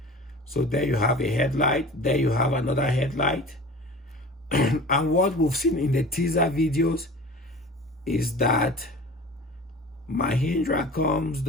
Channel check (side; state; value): both; normal; correlation 0.39